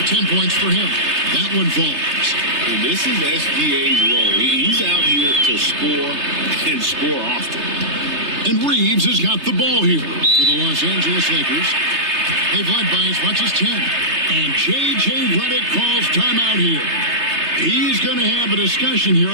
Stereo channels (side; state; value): left; late; 3.3 ms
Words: 10 points for him. That one falls. And this is SGA's role. He's out here to score and score often. And Reeves has got the ball here for the Los Angeles Lakers. They've led by as much as 10. And J.J. Redick calls timeout here. He's going to have a discussion here